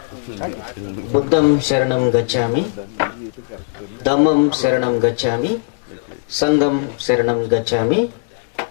బుద్ధం శరణం గచ్చామి, ధమ్మం శరణం గచ్చామి, సంఘం శరణం గచ్చామి.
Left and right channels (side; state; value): right; silent; digital silence